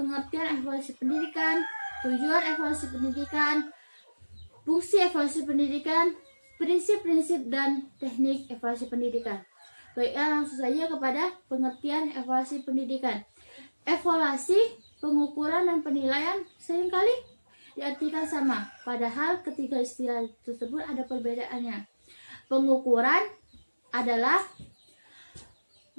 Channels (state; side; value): inverted; both; correlation -1.00